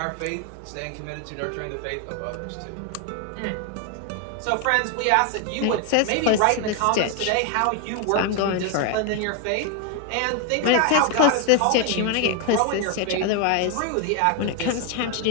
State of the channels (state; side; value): different; both; correlation 0.01